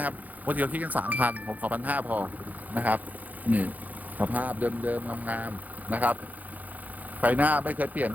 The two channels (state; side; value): late; left; 0.080 ms